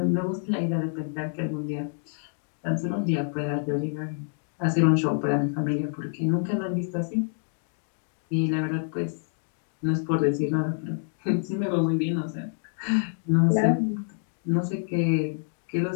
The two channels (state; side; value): silent; right; digital silence